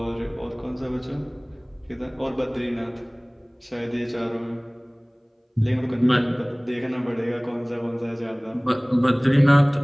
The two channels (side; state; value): both; identical; correlation 1.00